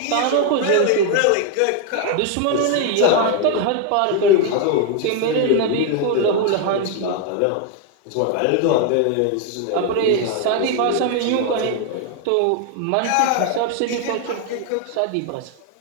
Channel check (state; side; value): different; both; correlation 0.01